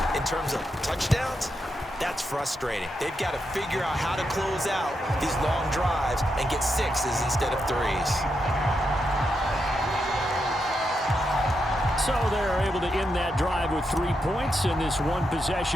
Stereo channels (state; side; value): normal; both; correlation 0.84